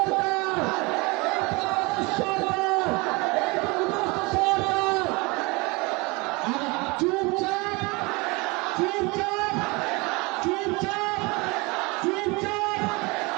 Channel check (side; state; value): left; quieter; 26.2 dB